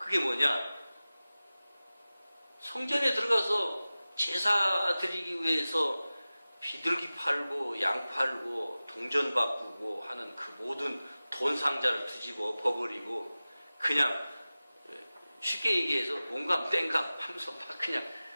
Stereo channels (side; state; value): both; inverted; correlation -0.97